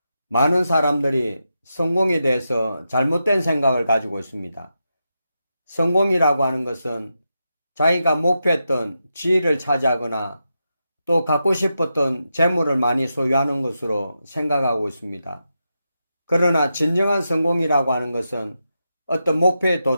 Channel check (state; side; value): inverted; both; correlation -0.87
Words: 많은 사람들이 성공에 대해서 잘못된 생각을 가지고 있습니다. 성공이라고 하는 것은 자기가 목표했던 지위를 차지하거나 또 갖고 싶었던 재물을 많이 소유하는 것으로 생각하고 있습니다. 그러나 진정한 성공이라고 하는 것은 어떤 목표에